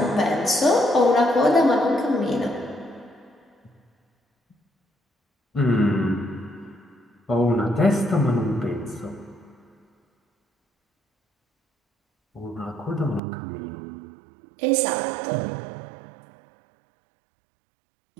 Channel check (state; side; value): drops out; left; at 13.2 s